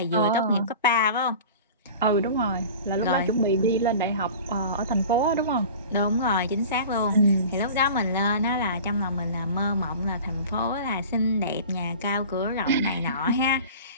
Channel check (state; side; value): inverted; both; correlation -0.39